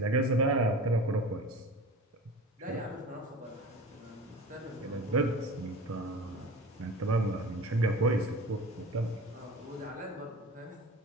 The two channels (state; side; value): normal; both; correlation 0.37